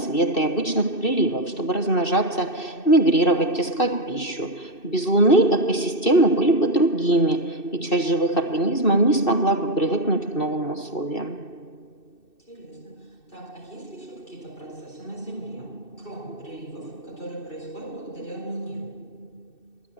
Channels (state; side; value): late; right; 2.6 ms